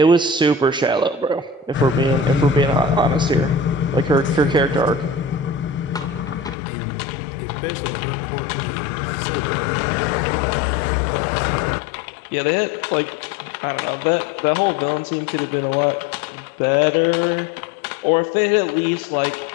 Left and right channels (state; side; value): drops out; right; at 6.6 s